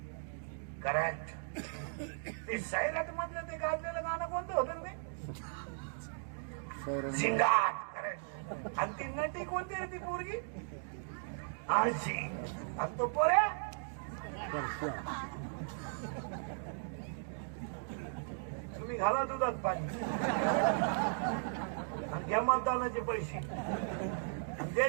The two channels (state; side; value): silent; left; digital silence